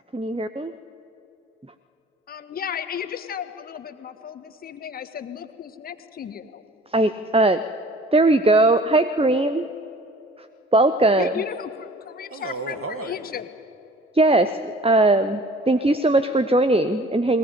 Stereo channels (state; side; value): normal; both; correlation 0.48